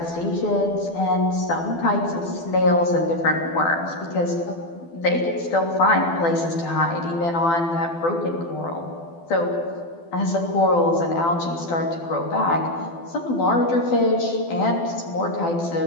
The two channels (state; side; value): late; right; 12 ms